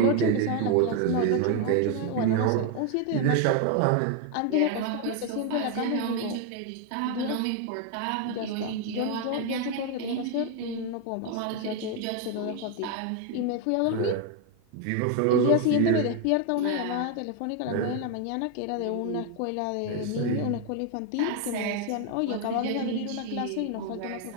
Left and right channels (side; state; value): both; different; correlation 0.01